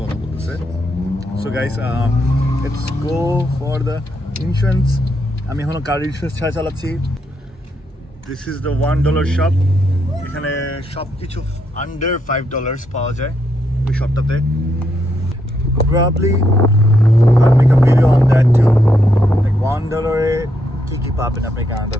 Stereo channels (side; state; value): both; normal; correlation 0.78